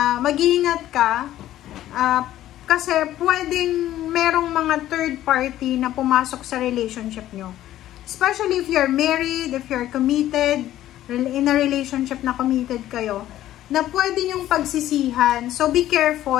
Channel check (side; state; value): right; quieter; 13.4 dB